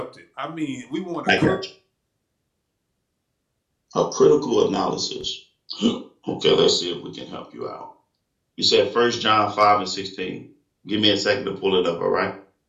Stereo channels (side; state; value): both; identical; correlation 1.00